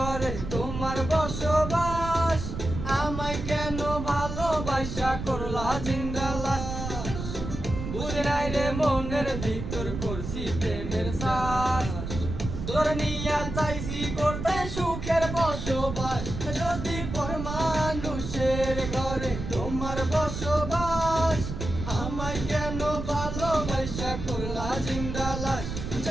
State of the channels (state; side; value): noise; right; rumble, 6 dB below the sound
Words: তোমার বসবাস, আমায় কেন ভালোবাসা করলা জিন্দা লাশ। বুঝে নাই রে মনের ভিতর করছি প্রেমের শ্বাস, তোর নিয়া চাইছি করতে সুখের বসবাস। যদি পর মানুষের ঘরে তোমার বসবাস, আমায় কেন ভালোবাসা করলা জিন্দা লাশ।